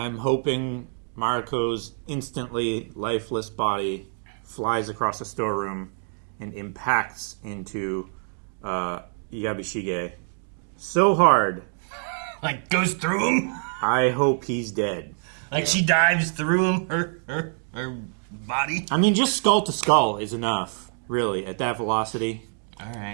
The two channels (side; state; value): left; silent; 56 dB below the other